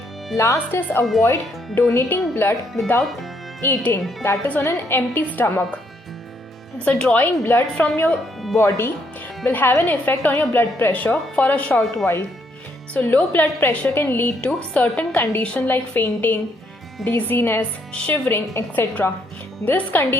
Last is avoid donating blood without eating, that is on an empty stomach. So drawing blood from your body will have an effect on your blood pressure for a short while. So low blood pressure can lead to certain conditions like fainting, dizziness, shivering, etc. This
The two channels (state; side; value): normal; both; correlation 0.72